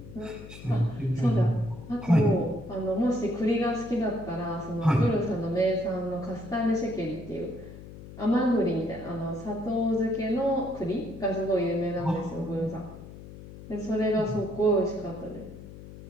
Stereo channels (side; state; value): left; noise; hum, 15 dB below the sound